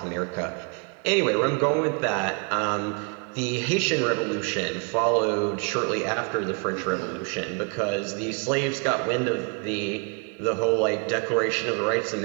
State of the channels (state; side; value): quieter; left; 35.1 dB